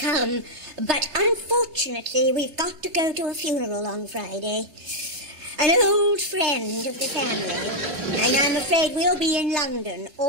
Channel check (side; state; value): left; late; 3.3 ms